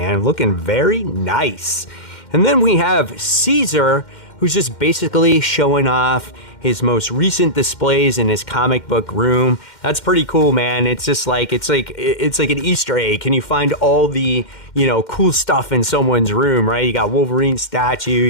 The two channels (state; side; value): late; right; 2.1 ms